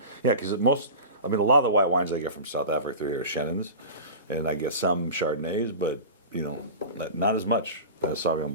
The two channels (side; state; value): both; inverted; correlation -0.32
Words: Yeah, because a lot of the white wines I get from South Africa through here are Chenin's, and I get some Chardonnays, but not as much as Sauvignon